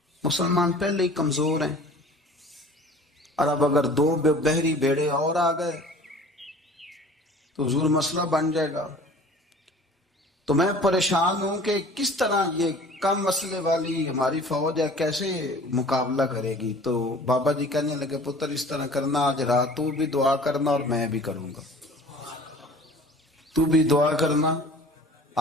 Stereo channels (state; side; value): normal; both; correlation 0.46